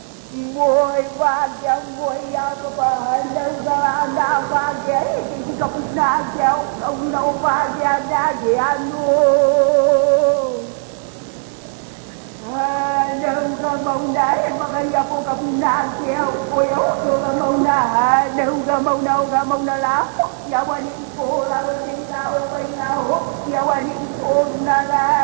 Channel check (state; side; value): silent; left; 67 dB below the other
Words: Boy, Vagia, boy, Yakaba, Nanda, Vagia, Kapunagia, no Vagia, Nagia, no. Đâu mông đá mà cái giờ cô gặp nàng kêu ôi ôi tôi gặp mông đá đâu gặp mông đá lá giờ qua đi cô là đi sao bây giờ giờ qua đi cô là